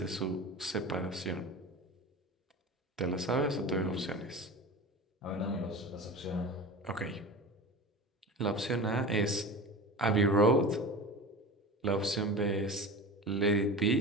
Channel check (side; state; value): both; normal; correlation 0.32